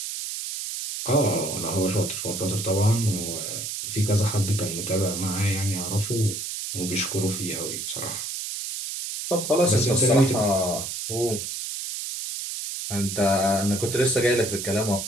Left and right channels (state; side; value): noise; right; hiss, 5 dB below the sound